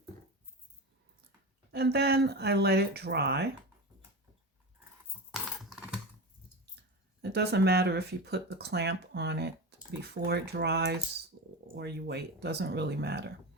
And then I let it dry. It doesn't matter if you put the clamp on it before it dries or you wait, it doesn't really matter.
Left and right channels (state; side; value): normal; both; correlation 0.25